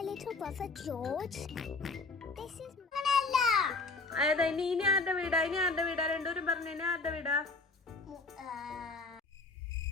little brother George. This is അതാ ഇനി ആരുടെ വീടാ? ഇനി ആരുടെ വീടാ? രണ്ടുപേരും പറഞ്ഞു. ഇനി ആരുടെ വീടാ?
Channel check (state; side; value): quieter; right; 3.7 dB